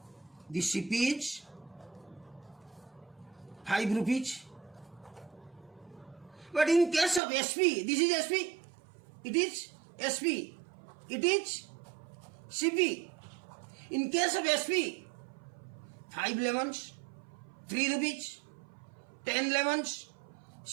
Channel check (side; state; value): left; drops out; at 7.2 s